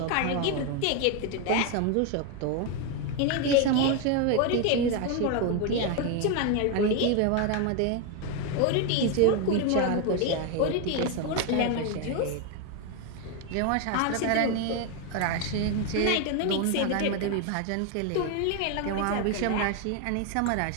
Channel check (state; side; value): different; both; correlation 0.01